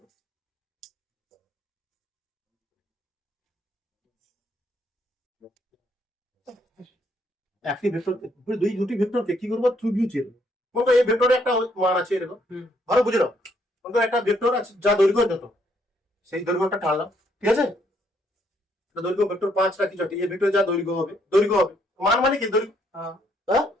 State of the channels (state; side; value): normal; both; correlation 0.71